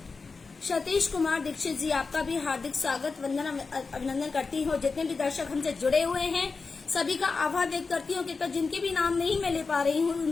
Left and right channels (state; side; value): quieter; right; 4.5 dB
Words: सतीश कुमार दीक्षित जी, आपका भी हार्दिक स्वागत, वंदन, अभिनंदन करती हूँ। जितने भी दर्शक हमसे जुड़े हुए हैं सभी का आभार व्यक्त करती हूँ। कृपया जिनके भी नाम नहीं मैं ले पा रही हूँ उन